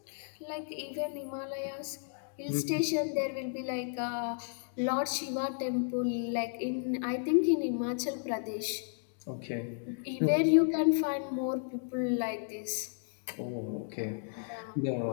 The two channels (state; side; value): silent; right; digital silence